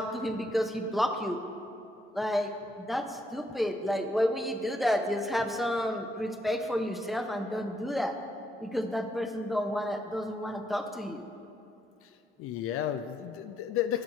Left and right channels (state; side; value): normal; both; correlation 0.74